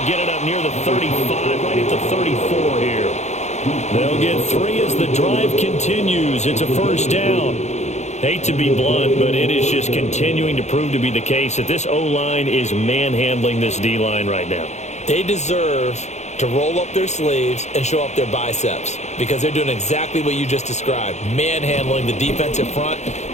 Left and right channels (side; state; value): right; late; 0.33 ms